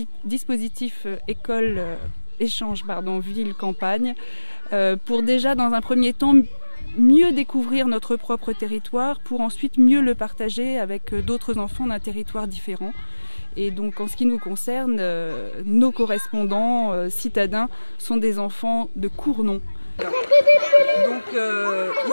dispositif école échange ville-campagne pour déjà dans un premier temps mieux découvrir notre propre territoire pour ensuite mieux le partager avec d'autres enfants d'un territoire différent. Et donc en ce qui nous concerne, nos correspondants citadins sont des enfants de Cournon. Donc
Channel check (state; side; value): inverted; both; correlation -1.00